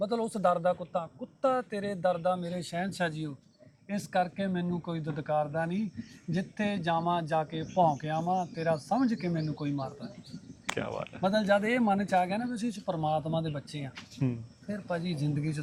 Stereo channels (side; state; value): both; identical; correlation 1.00